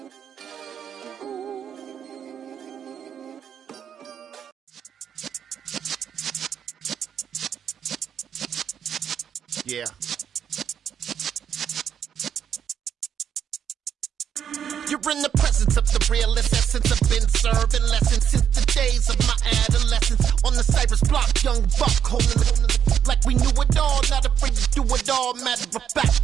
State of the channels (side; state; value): left; quieter; 8.6 dB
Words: Yeah. You're in the presence of the realest essence. I've been serving lessons since the days of my adolescence. On the Cypress block, young buck holding it like we knew it all. Not afraid to do it all. Matter of